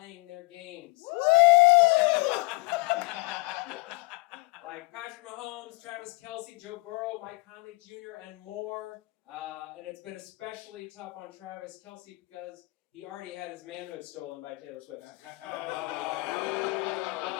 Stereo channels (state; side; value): quieter; right; 25.3 dB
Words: their games. Like Patrick Mahomes, Travis Kelce, Joe Burrow, Mike Conley Jr., and more. And it's been especially tough on Travis Kelce because he already had his manhood stolen by Taylor Swift.